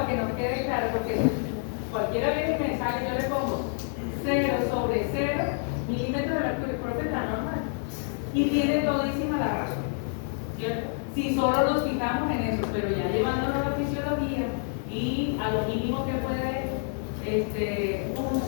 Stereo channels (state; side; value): silent; right; 57 dB below the other